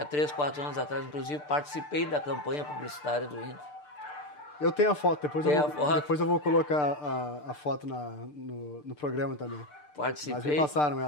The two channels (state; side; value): late; right; 6.7 ms